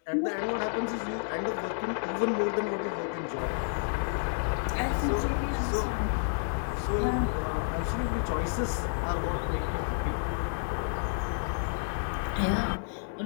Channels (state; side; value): silent; right; digital silence